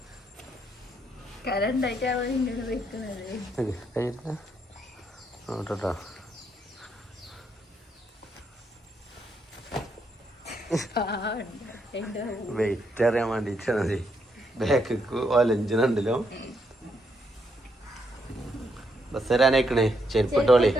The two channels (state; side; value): normal; both; correlation 0.77